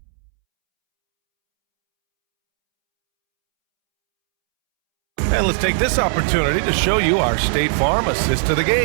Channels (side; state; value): left; silent; 67 dB below the other